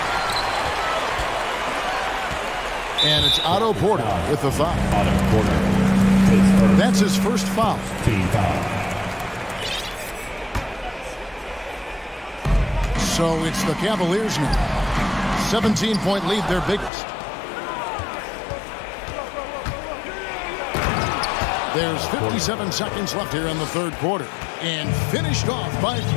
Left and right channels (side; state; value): right; drops out; at 16.9 s